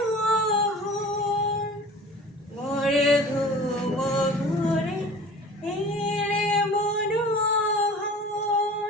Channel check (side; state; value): both; normal; correlation 0.42